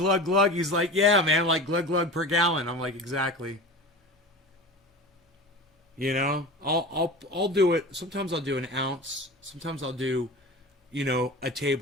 glug. He's like, yeah, man, like glug, glug per gallon. I'm like, exactly. I'll do it. Sometimes I'll do an ounce. Sometimes I'll do, a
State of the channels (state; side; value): normal; both; correlation 0.33